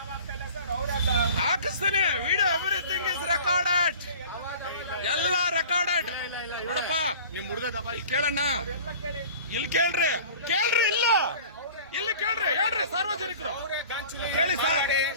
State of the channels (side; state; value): both; inverted; correlation -0.43